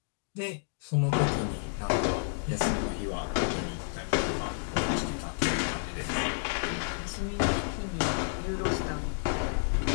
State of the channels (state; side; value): silent; right; digital silence